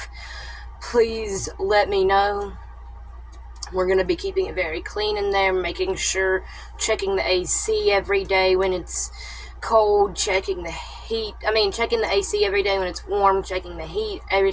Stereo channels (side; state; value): both; identical; correlation 1.00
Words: please let me know. We're going to be keeping it very clean in there, making sure, checking the AC every day when it's cold, checking the AC every day when it's warm, checking the heat every